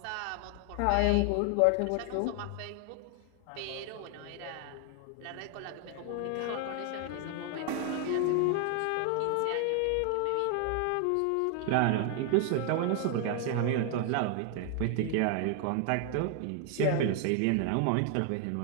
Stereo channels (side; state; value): both; different; correlation 0.00